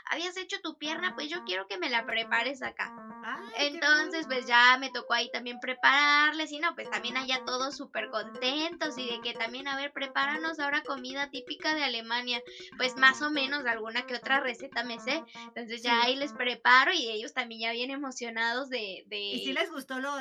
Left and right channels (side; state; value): both; identical; correlation 1.00